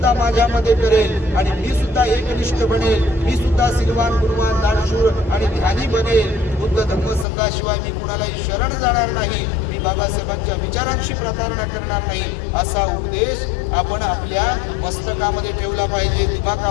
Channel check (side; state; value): right; drops out; at 7.2 s